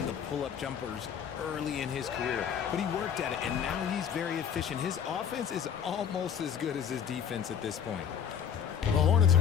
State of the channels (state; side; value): quieter; right; 8.1 dB